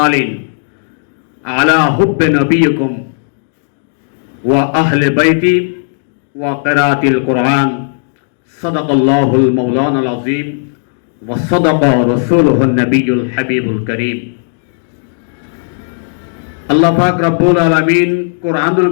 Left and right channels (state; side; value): silent; right; digital silence